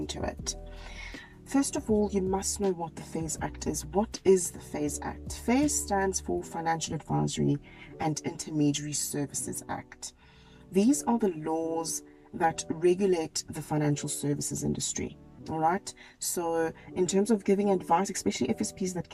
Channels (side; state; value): both; identical; correlation 1.00